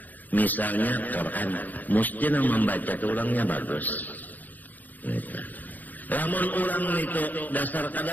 misalnya Quran, mesti nang membaca itu orangnya bagus. Lamun orang itu dasar kada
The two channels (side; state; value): right; late; 0.083 ms